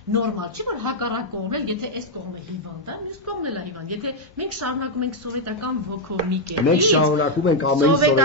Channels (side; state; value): both; normal; correlation 0.00